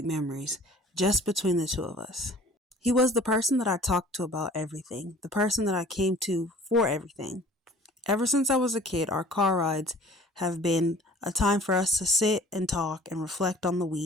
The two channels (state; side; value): normal; both; correlation 0.49